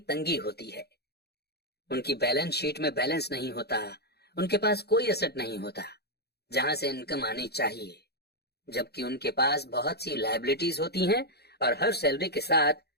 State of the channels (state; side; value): late; right; 0.47 ms